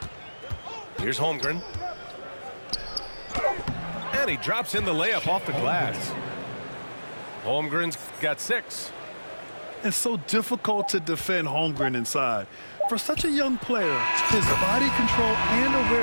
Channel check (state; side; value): inverted; both; correlation -1.00